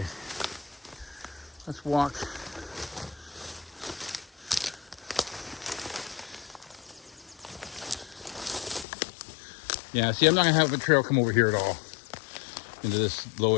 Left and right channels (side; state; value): right; drops out; at 8.8 s